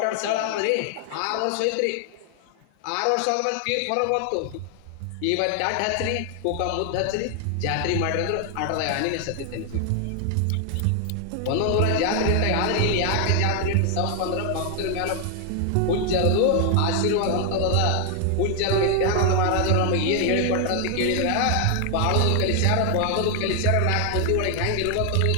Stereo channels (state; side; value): different; both; correlation 0.00